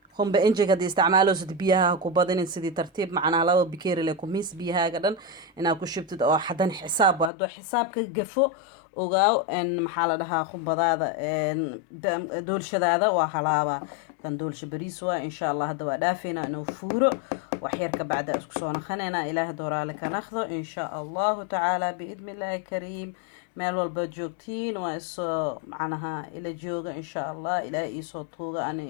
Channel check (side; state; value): right; drops out; at 7.3 s